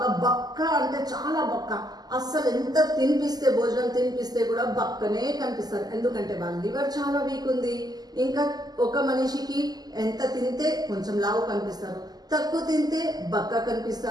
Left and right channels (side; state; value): left; late; 0.19 ms